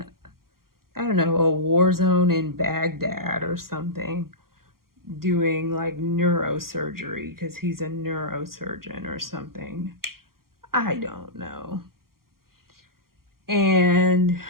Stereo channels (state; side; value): late; left; 0.93 ms